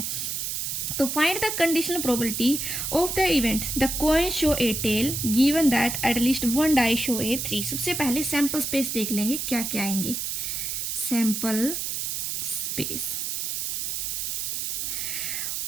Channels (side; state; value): right; noise; hiss, 2 dB below the sound